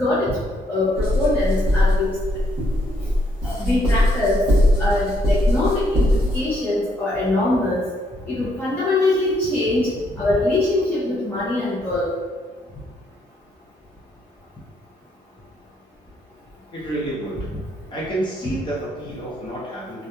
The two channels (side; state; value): both; normal; correlation 0.73